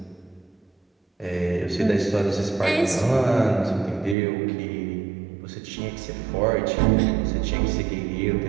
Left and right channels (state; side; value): drops out; left; at 4.2 s